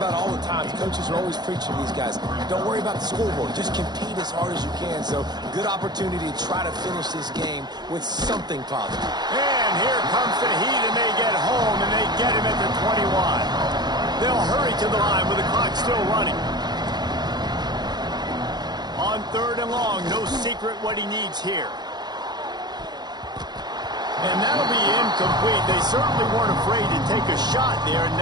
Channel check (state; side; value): late; left; 0.20 ms